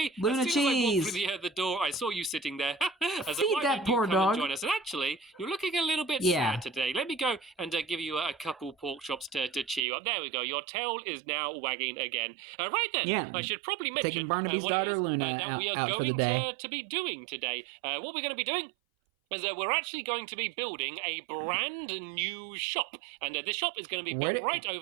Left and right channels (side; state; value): left; drops out; at 9.8 s